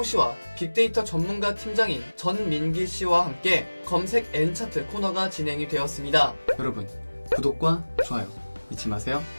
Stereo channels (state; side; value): inverted; both; correlation -1.00